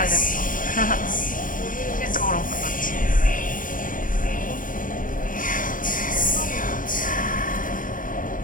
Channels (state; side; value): late; right; 0.39 ms